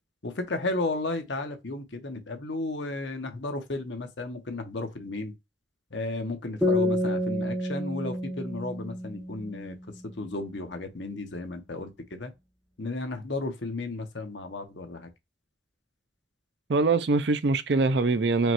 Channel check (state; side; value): normal; both; correlation 0.40